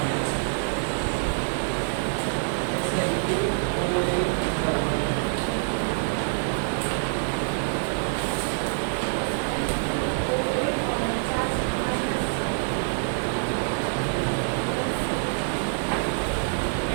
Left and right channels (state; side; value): silent; left; 61 dB below the other